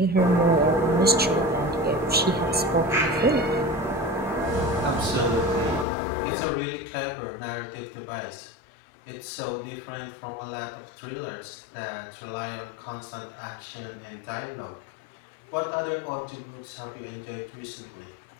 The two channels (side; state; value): right; drops out; at 5.9 s